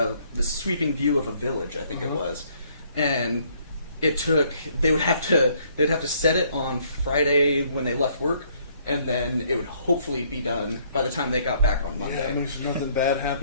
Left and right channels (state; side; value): inverted; both; correlation -0.65